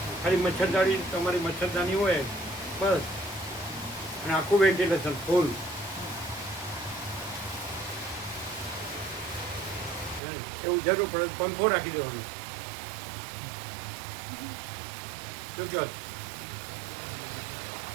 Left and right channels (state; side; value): drops out; left; at 10.2 s